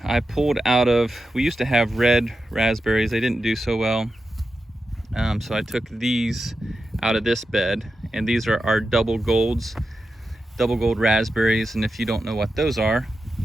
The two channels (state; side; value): normal; both; correlation 0.90